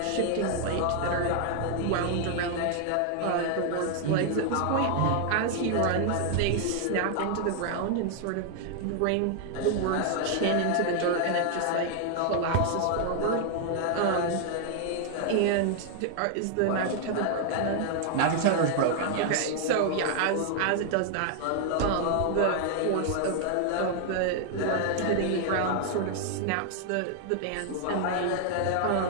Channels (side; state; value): both; different; correlation 0.00